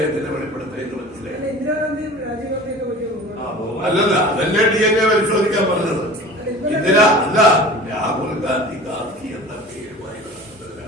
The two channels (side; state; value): both; normal; correlation 0.40